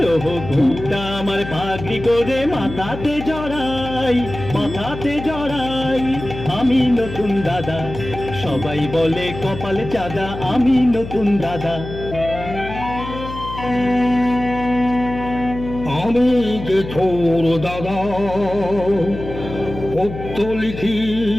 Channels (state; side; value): noise; left; hum, 10 dB below the sound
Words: ওহো ঘুমটা আমার পাগড়ি করে মাথাতে জড়াই আমি নতুন দাদা সবাই বলে কপাল চাঁদা আমি নতুন দাদা আমি যে ছোট দাদা পত্র লিখি